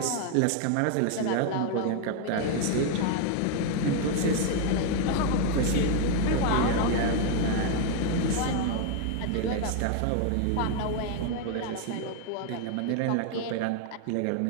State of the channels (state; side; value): different; both; correlation 0.01